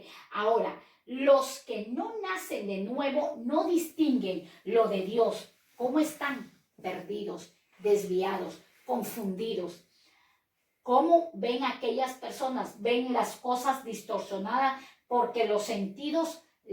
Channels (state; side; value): identical; both; correlation 1.00